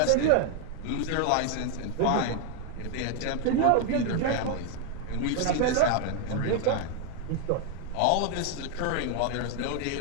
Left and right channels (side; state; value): both; different; correlation 0.01